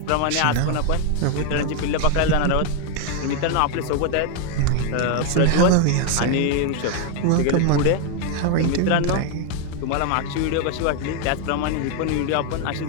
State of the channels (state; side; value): different; both; correlation 0.00